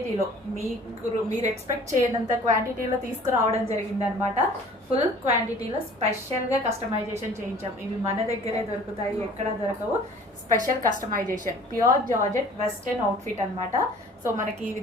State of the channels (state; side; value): normal; both; correlation 0.49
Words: మీరు ఎక్స్పెక్ట్ చేయనంత క్వాంటిటీలో తీసుకురావడం జరిగిందనమాట. ఫుల్ క్వాంటిటీలో స్పెషల్గా కస్టమైజేషన్ చేయించాం. ఇవి మన దగ్గరే దొరుకుతాయి, ఎక్కడ దొరకవు. Special customization, pure georgette western outfit అనమాట. సో మనకి ఈ